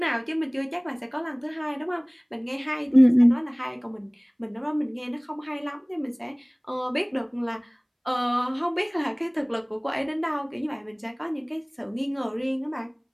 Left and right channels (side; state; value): both; identical; correlation 1.00